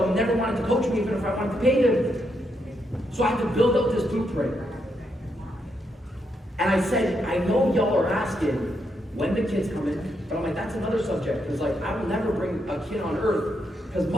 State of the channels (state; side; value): normal; both; correlation 0.80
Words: never wanted to coach me, even if I wanted to pay them. So I had to build up this blueprint. And I said, I know y'all are asking, when the kids come in, but I'm like, that's another subject, because like, I will never bring a kid on earth, because